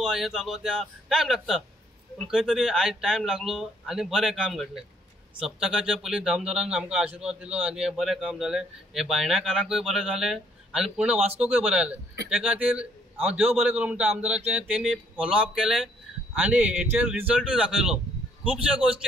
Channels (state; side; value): normal; both; correlation 0.66